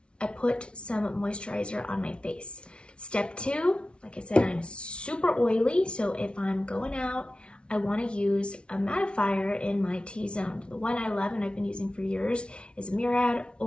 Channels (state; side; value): late; right; 0.058 ms